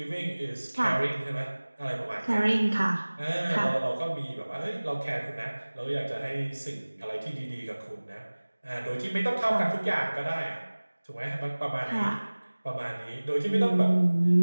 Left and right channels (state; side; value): inverted; both; correlation -1.00